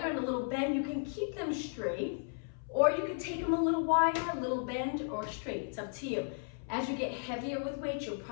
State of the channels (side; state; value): right; silent; 55 dB below the other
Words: in a little bend. You can keep them straight, or you can take them a little wider, a little bend, or straight. It's up to you. As you get heavier with weight, you're